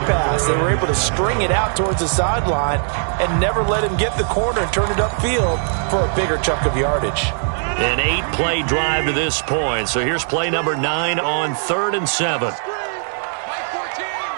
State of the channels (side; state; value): left; silent; 66 dB below the other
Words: They were able to string it out towards the sideline and never let him get the corner and turn it upfield for a bigger chunk of yardage. An 8-play drive to this point. So here's play number 9 on 3rd and 7.